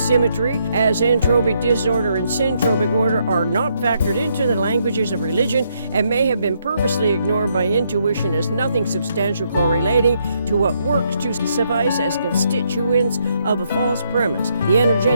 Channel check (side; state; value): both; inverted; correlation -0.75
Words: as entropic disorder and syntropic order are not factored into the languages of religion and may have been purposely ignored by intuition as nothing substantial correlating to what works to suffice as constituents of a false premise. The